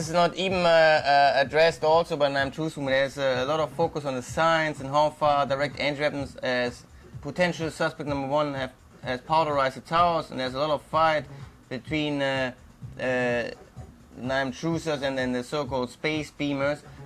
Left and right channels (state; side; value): identical; both; correlation 1.00